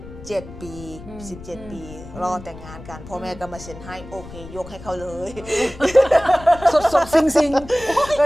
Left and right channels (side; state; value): left; noise; rumble, 16 dB below the sound